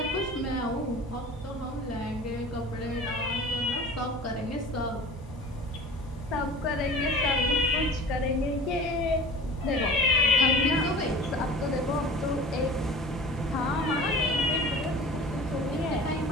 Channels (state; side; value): normal; both; correlation 0.40